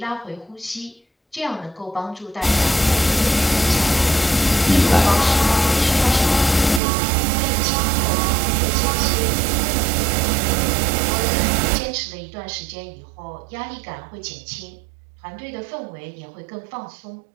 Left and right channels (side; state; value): left; drops out; at 6.8 s